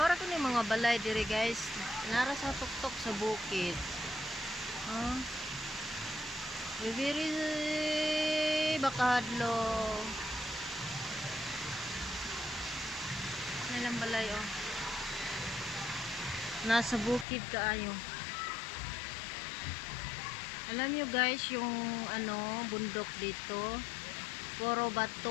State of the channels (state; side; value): drops out; right; at 17.2 s